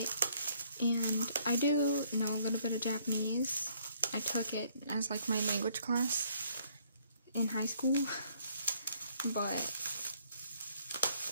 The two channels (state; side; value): inverted; both; correlation -0.65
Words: and I do know a little bit of Japanese. I took it as like my language class in high school, but